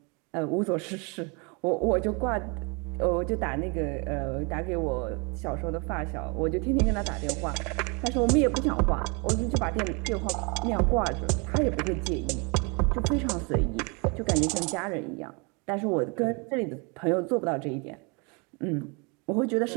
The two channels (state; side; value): quieter; left; 31.5 dB